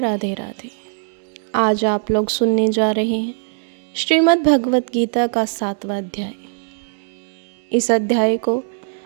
राधे। आज आप लोग सुनने जा रहे हैं श्रीमद् भगवत गीता का 7वां अध्याय। इस अध्याय को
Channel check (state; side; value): silent; left; digital silence